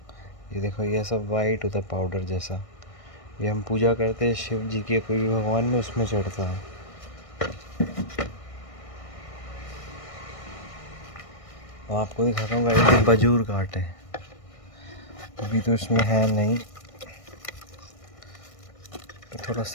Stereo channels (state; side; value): late; right; 1.6 ms